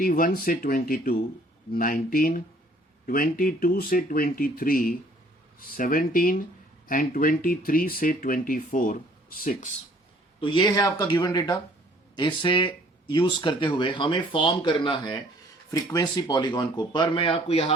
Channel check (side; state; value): both; normal; correlation 0.58